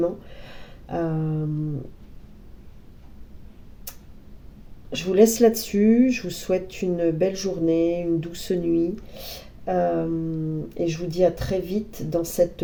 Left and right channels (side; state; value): both; identical; correlation 1.00